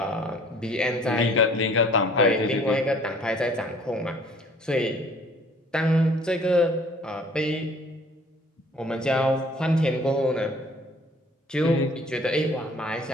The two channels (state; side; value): normal; both; correlation 0.54